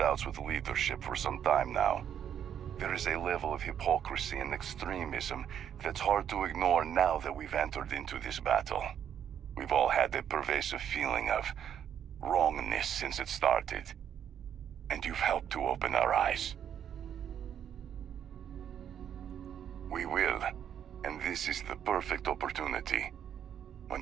with leadership for some time now. There is a level of hypocrisy and extremism that's hard to ignore now that we've entered into this battle. We've all had a pervasive feeling of wrongness since it started, and you've helped to open our eyes. We will, and this is the perfect opportunity.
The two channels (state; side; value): quieter; left; 9.1 dB